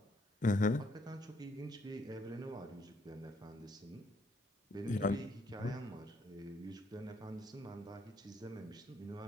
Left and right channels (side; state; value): both; normal; correlation 0.70